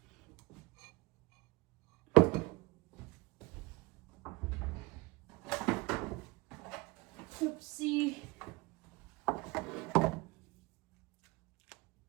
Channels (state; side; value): quieter; left; 23.8 dB